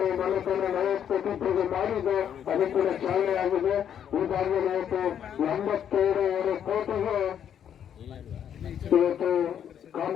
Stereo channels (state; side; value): quieter; right; 9.1 dB